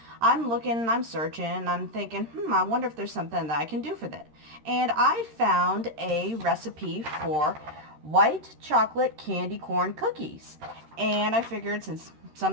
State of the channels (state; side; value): late; left; 13 ms